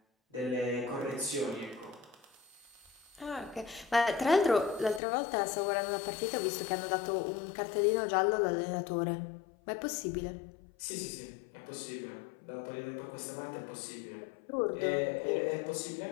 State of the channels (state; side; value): drops out; right; at 5.0 s